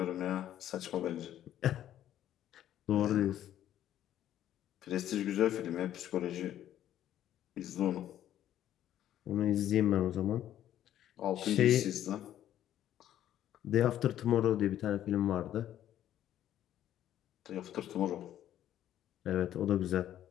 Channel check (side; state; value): right; quieter; 11.7 dB